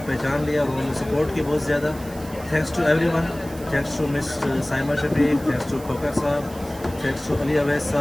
पहचान लिया और उन्होंने सपोर्ट की बहुत ज़्यादा। Thanks to everyone, thanks to miss Saima Shafiq, thanks to Khokhar साहब, थैंक्स टू अली अवैस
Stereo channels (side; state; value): right; noise; hiss, 19 dB below the sound